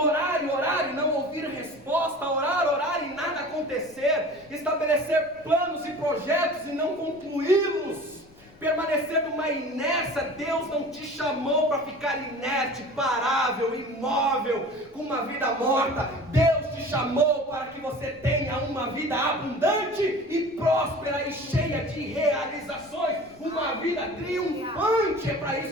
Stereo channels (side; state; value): left; noise; rumble, 27 dB below the sound